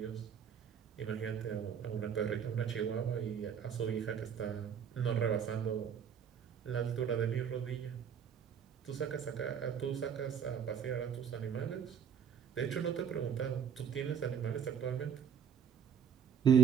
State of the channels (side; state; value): left; quieter; 7.9 dB